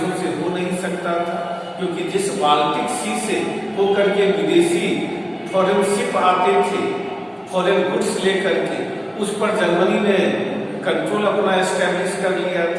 से हो नहीं सकता था, क्योंकि जिस बाल्टिक सी से होकर के विदेशी फॉरेन शिप आते थे फॉरेन गुड्स लेकर के, उस पर जर्मनी ने कंट्रोल अपना एस्टेब्लिश कर लिया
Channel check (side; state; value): both; identical; correlation 1.00